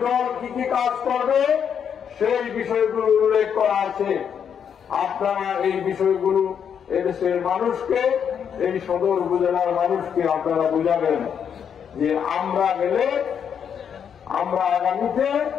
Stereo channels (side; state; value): right; quieter; 7.8 dB